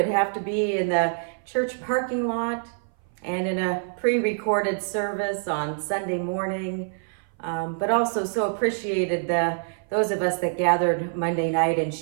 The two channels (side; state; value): left; silent; 58 dB below the other